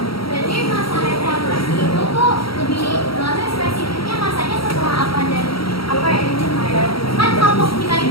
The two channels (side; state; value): right; late; 0.75 ms